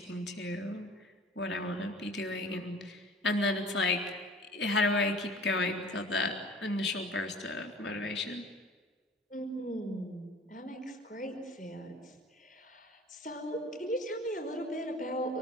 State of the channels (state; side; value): normal; both; correlation 0.45